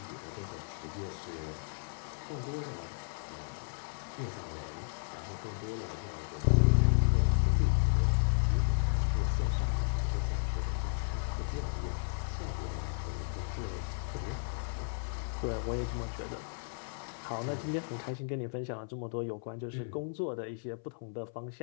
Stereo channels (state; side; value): silent; right; 55 dB below the other